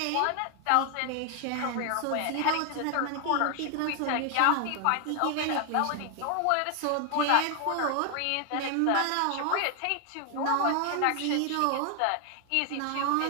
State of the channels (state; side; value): different; both; correlation 0.00